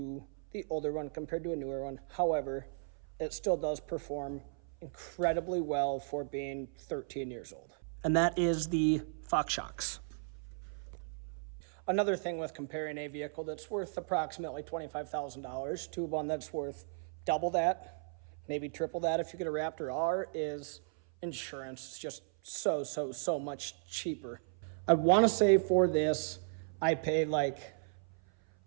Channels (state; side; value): silent; left; 54 dB below the other